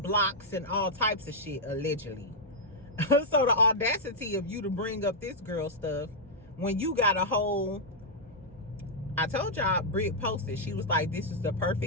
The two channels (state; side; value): normal; both; correlation -0.06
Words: blocks and all types of shit, allegedly. So the audacity of you to bring up this girl stuff when you got a whole... I told y'all, Britt posted, she was like, this is the